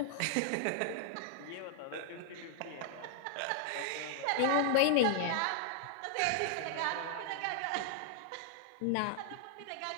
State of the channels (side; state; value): both; different; correlation -0.01